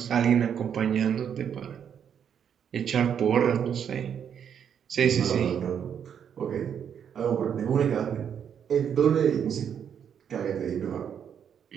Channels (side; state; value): left; quieter; 8.2 dB